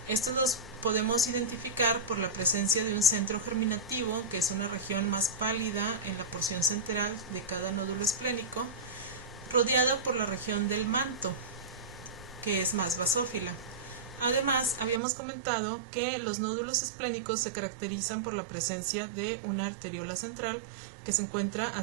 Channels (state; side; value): drops out; left; at 15.0 s